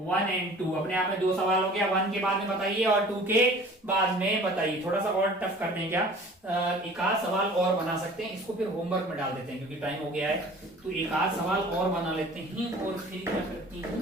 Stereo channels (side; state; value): both; normal; correlation 0.46